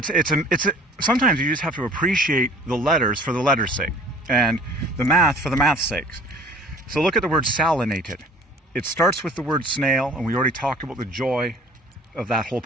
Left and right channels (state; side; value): normal; both; correlation 0.49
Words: sometimes you just have to appreciate the letters for the letters' sake, and the math for the math's sakes. So look at the word salinated. It starts with the word snail, and we already talked about the joy of that whole